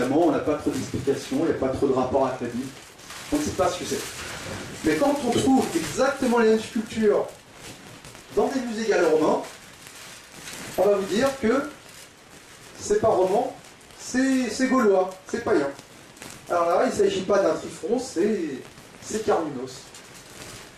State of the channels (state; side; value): identical; both; correlation 1.00